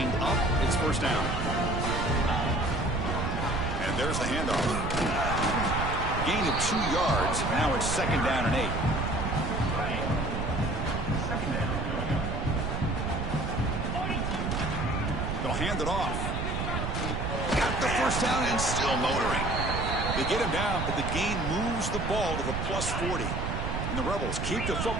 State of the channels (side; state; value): right; noise; rumble, 2 dB below the sound